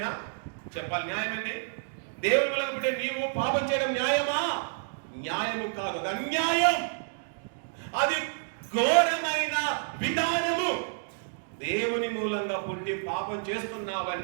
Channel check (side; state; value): left; silent; digital silence